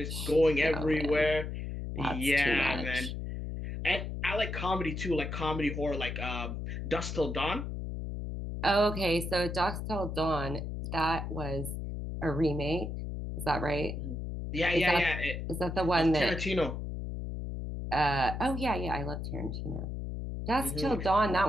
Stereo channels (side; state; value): left; noise; hum, 5 dB below the sound